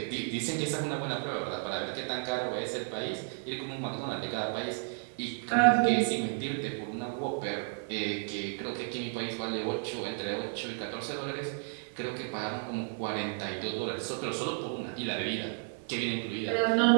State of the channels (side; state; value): left; silent; 56 dB below the other